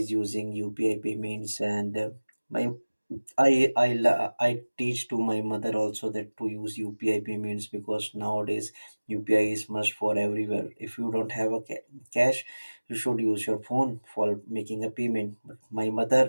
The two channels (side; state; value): both; inverted; correlation -1.00